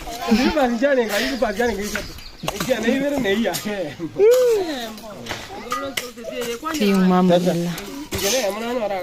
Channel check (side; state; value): both; identical; correlation 1.00